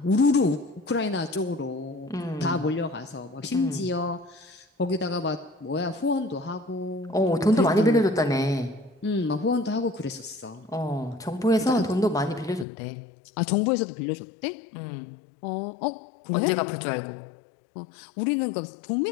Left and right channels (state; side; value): drops out; right; at 12.7 s